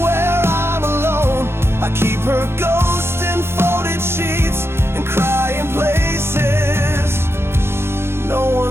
where I'm alone. I keep her ghost in folded sheets and crying places no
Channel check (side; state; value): left; late; 0.12 ms